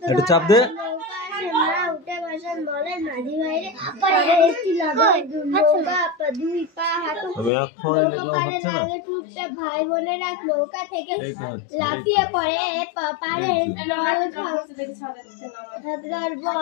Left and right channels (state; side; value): drops out; right; at 7.5 s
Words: একটু চাপ দে। নৌকা আসে, মা উঠে বসেন, বলেন মাঝি ভাইরে পরে একটি লাগাই নৌকা দুই পা হাঁটু। আমি এখন লিখলাম, হচ্ছে না? ভাই বোনেরা নৌকা থেকে এই তো হচ্ছে, লাফিয়ে পড়ে পারে হাবড়ার